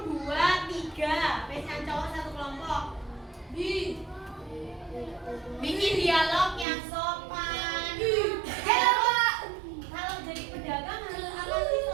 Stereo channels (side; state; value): left; drops out; at 6.7 s